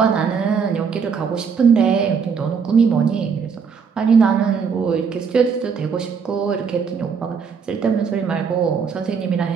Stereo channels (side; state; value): left; quieter; 6.2 dB